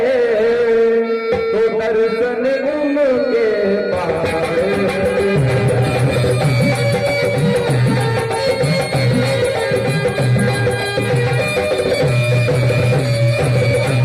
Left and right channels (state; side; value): identical; both; correlation 1.00